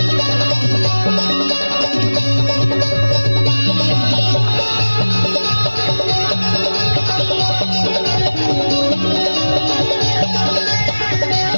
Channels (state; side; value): inverted; both; correlation -1.00